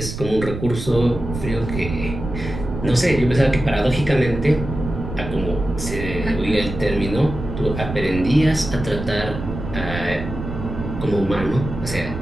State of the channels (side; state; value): right; noise; rumble, 7 dB below the sound